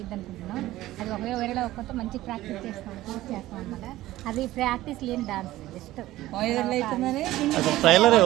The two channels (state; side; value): quieter; left; 15.9 dB